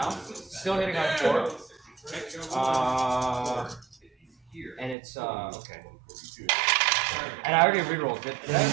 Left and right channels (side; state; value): left; drops out; at 5.0 s